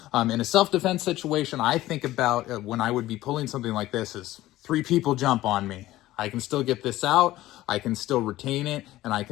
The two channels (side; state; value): right; quieter; 16.0 dB